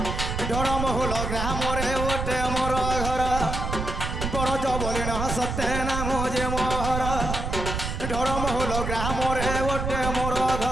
ঢড়মহুল গ্রামরে ওটে মোর ঘর বরজ বলিণ সত্যে নাম যে মোহর ঢড়মহুল গ্রামরে ওটে মোর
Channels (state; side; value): noise; right; rumble, 3 dB below the sound